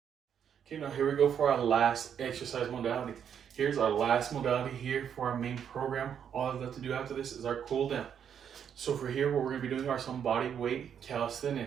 Okay, now here we go for our last exercise modality. Here's our last modality here for our main program. All I've got to do after this is our cool down. So for here, what we're gonna be doing are some body weight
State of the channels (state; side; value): quieter; left; 8.3 dB